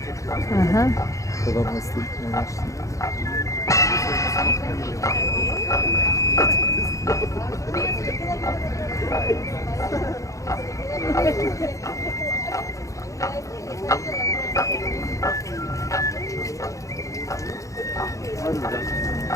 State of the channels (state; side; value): late; right; 0.15 ms